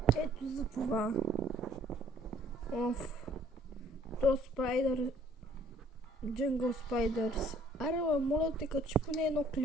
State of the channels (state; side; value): normal; both; correlation 0.58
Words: Ето за това. Оф. То Спайдър... Jungle Spiders. Аре, моля те, качи поне едно